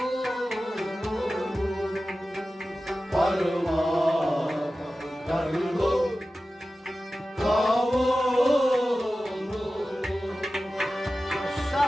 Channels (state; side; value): normal; both; correlation 0.95